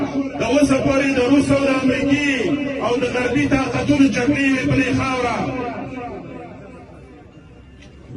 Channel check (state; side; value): identical; both; correlation 1.00